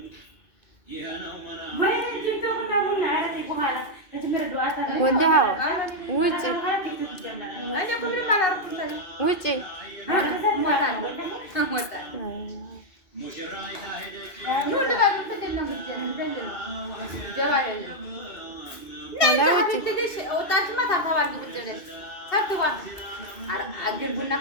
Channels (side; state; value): right; late; 2.4 ms